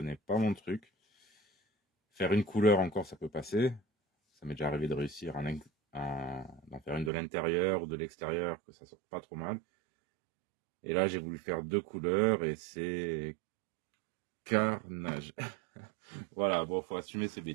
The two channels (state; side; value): drops out; left; at 7.1 s